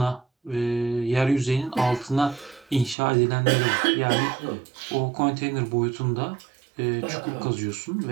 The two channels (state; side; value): drops out; left; at 3.0 s